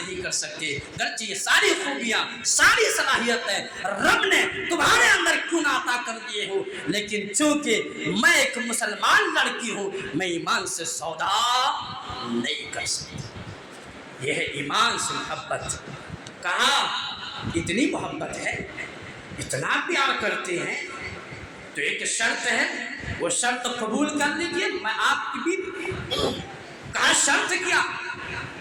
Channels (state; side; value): identical; both; correlation 1.00